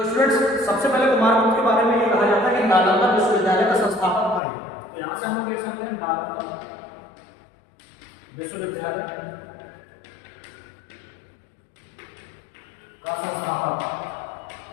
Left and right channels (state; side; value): drops out; right; at 4.4 s